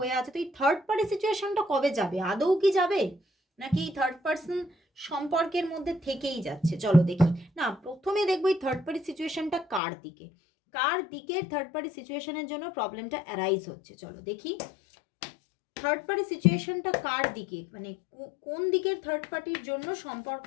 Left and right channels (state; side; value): drops out; right; at 9.8 s